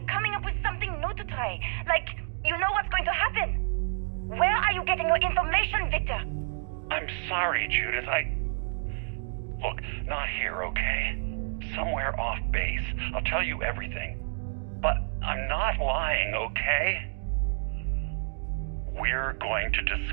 coming up with something new to try, like you know what's going to happen. Where are you getting your information, Victor? I'm sorry, Judith. Look, not here, okay? Somewhere off base. I'll tell you everything. But I'm not lying, okay? We're going to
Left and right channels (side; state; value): left; silent; digital silence